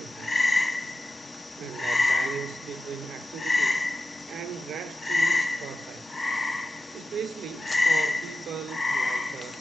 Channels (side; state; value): both; normal; correlation 0.92